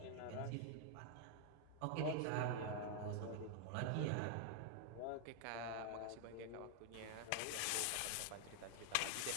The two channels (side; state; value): both; different; correlation 0.00